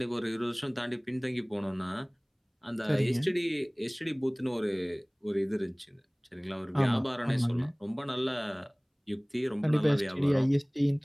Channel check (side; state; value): both; identical; correlation 1.00